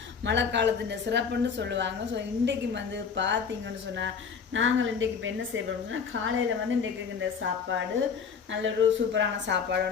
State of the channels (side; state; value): right; quieter; 6.2 dB